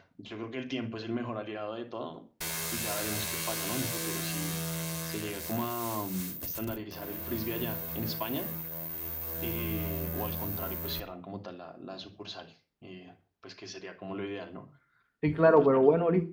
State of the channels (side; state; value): both; identical; correlation 1.00